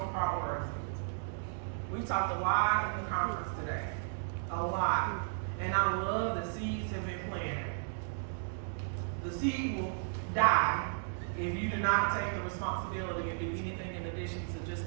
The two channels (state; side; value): silent; left; digital silence